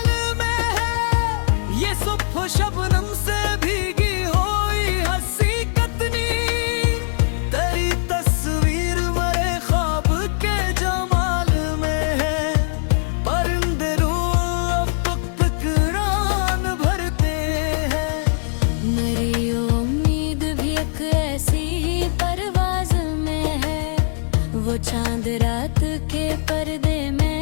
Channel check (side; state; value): right; silent; 62 dB below the other